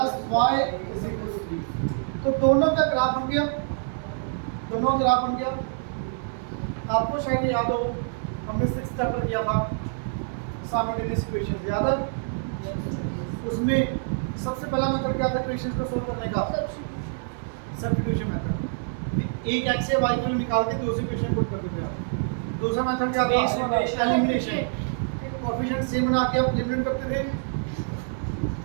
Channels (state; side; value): silent; left; digital silence